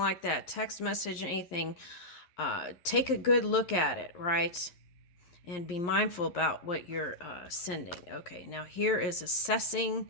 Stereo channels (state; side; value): late; right; 11 ms